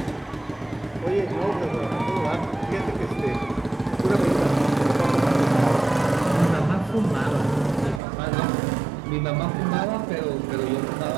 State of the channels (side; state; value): left; drops out; at 8.0 s